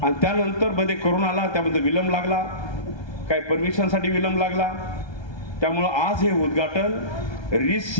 आणि त्यानंतर मध्ये कोरोना आला, त्यामध्ये विलंब लागला, काही परमिशनसाठी विलंब लागला. त्यामुळं आज हे उद्घाटन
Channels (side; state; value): right; late; 1.3 ms